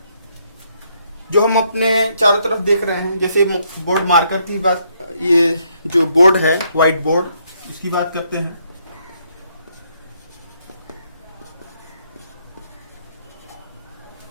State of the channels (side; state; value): both; inverted; correlation -0.73